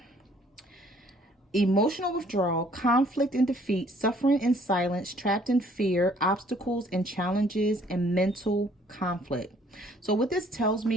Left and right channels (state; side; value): normal; both; correlation 0.60